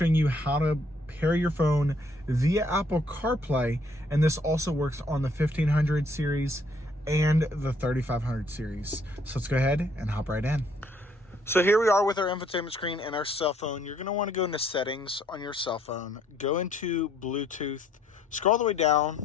you how to pair your phone via Apple CarPlay, and this also works on the 1500 series and the 3500 series. So let's go ahead and hop right in. So here we are with our infotainment screen and our cell phone. You're going to want to go into settings on your cell phone, go into Bluetooth, scroll all the way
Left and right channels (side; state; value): both; normal; correlation 0.66